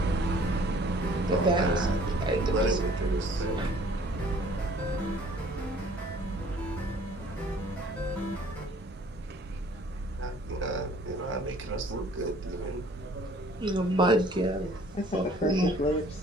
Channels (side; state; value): both; normal; correlation 0.55